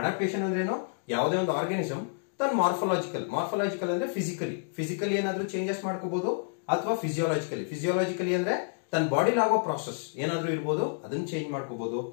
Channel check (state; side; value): silent; right; digital silence